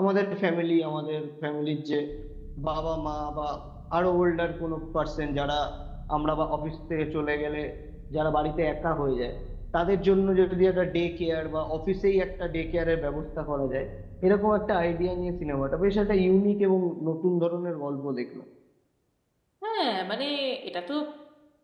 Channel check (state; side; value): identical; both; correlation 1.00